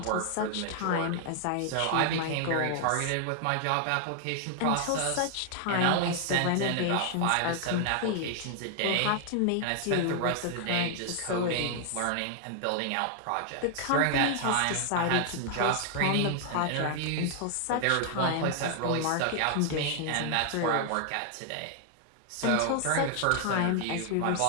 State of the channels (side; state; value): both; different; correlation 0.00